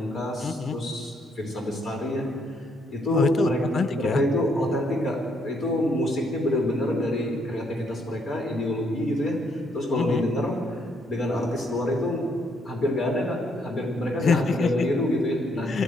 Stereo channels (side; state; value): both; normal; correlation 0.71